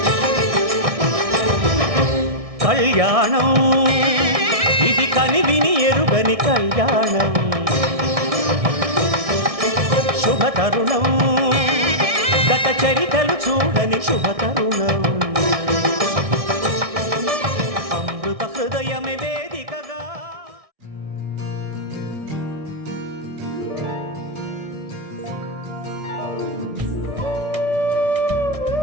కళ్యాణం ఇది కనివిని ఎరుగని కళ్యాణం శుభతరుణం గత చరితలు చూడని శుభతరుణం అమృత హృదయమే వేదికగా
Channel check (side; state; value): left; late; 1.6 ms